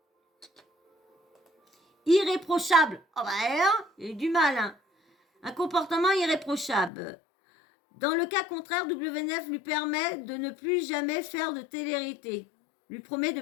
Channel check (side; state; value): right; drops out; at 6.9 s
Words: Irréprochable. Oh bah hein, il y a eu du mal. Hein. Un comportement irréprochable. Dans le cas contraire, W9 lui permet de ne plus jamais faire de télé-réalité. Lui promet de